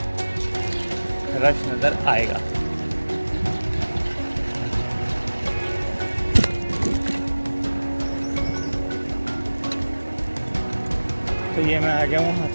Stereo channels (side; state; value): both; inverted; correlation -1.00